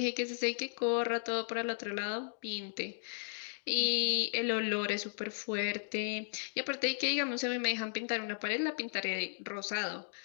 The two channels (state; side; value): silent; right; digital silence